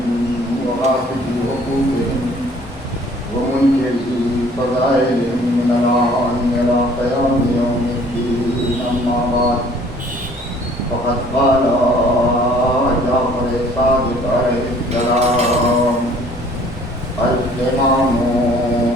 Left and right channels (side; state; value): both; normal; correlation 0.55